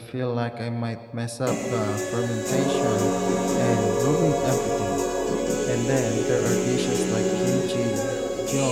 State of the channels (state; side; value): identical; both; correlation 1.00